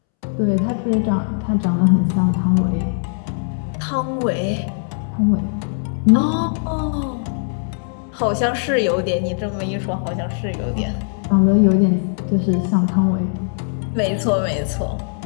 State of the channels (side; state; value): right; silent; 66 dB below the other